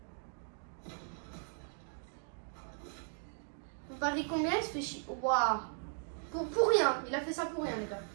Vous pariez combien? Il se fait chier. Waouh. Pour rien. Il a fait ça pour rien, les gars.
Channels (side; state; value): left; silent; 53 dB below the other